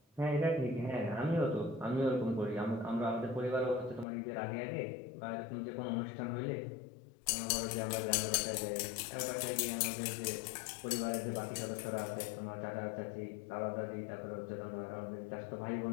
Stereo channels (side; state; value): right; drops out; at 4.0 s